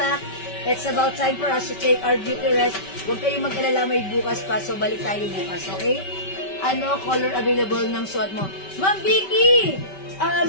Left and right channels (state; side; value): late; right; 5.2 ms